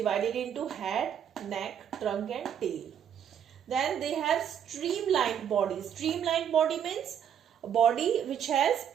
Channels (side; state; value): left; quieter; 8.9 dB